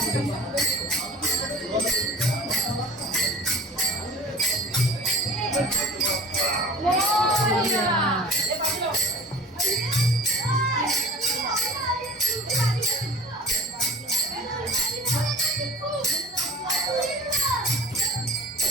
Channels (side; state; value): both; normal; correlation 0.42